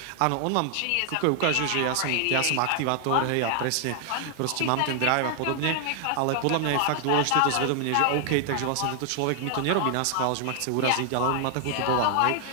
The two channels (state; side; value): different; both; correlation 0.00